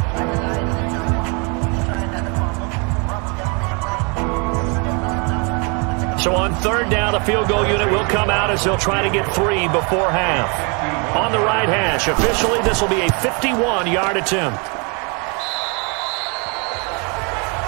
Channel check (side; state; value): left; quieter; 33.2 dB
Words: So on 3rd down, a field goal unit will come out as they'll try to get 3 before half. On the right hash, officially this will be a 51-yard attempt.